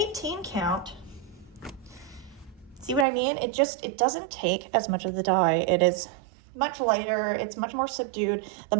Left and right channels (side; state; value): left; drops out; at 3.1 s